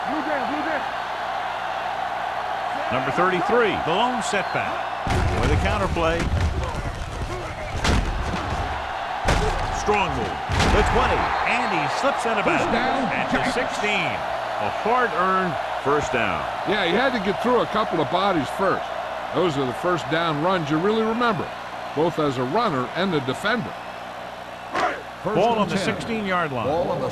Number 33, the lone setback. With a counter play. Strong move. The 20, and he slips out of bounds at the 16. A hard-earned first down. Yeah, he had to get through a couple of bodies first. Those are the first down runs you really remember, both as a runner and a defender. Ball on the 16-yard line. Ball on the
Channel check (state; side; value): identical; both; correlation 1.00